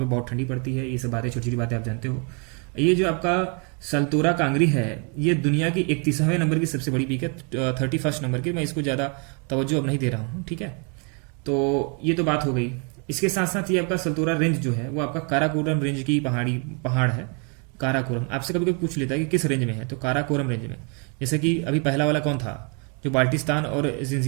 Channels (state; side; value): quieter; left; 36.2 dB